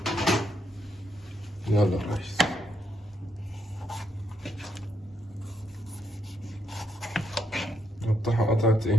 يلا يا ريس. نقطعها قطعة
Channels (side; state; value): both; normal; correlation 0.78